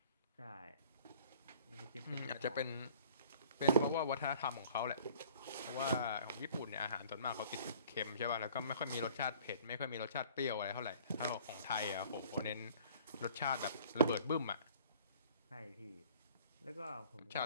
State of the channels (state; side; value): inverted; both; correlation -0.52